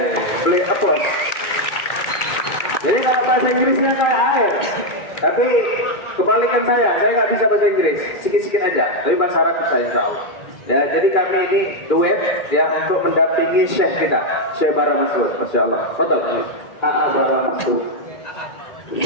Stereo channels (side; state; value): right; late; 2.3 ms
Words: beliau applause. Jadi kalau bahasa Inggrisnya kayak air, tapi kebalikan saya nggak bisa bahasa Inggris, sikit-sikit aja, tapi bahasa Arab saya tahu. Ya, jadi kami ini duet ya untuk mendampingi Syekh kita, Syekh Bara Masud. Masya Allah. Betul. Bara Masud.